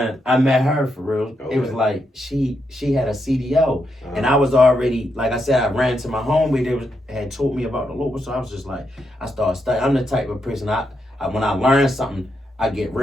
I met her for real. Okay. It was like she had a CDL, and I was already, like I said, I ran to my home where they had told me about the local. So I was just like, I started studying. I'm the type of person I when I learn something, I get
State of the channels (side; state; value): both; normal; correlation 0.82